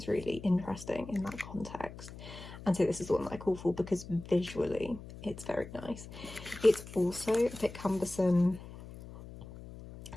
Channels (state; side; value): noise; left; hum, 14 dB below the sound